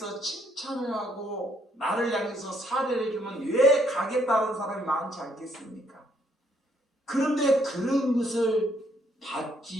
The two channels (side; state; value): both; normal; correlation 0.70